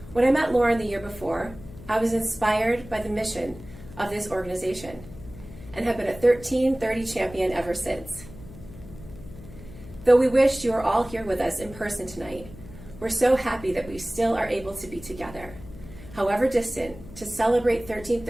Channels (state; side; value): noise; left; hum, 17 dB below the sound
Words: When I met Lauren the year before, I was inspired by the mission of this organization and have been a 1330 champion ever since. Though we wished you were all here with us in person tonight, we're so happy that we still are able to be together, however distant, to celebrate